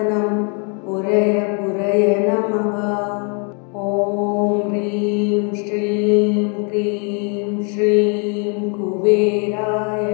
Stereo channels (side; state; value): right; quieter; 37.3 dB